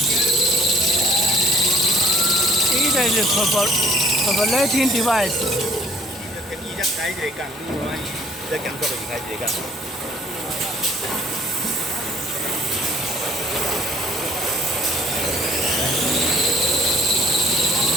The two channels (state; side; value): normal; both; correlation 0.56